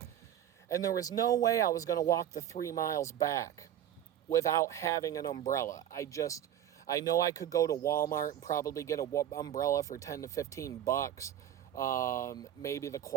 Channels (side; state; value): left; quieter; 11.0 dB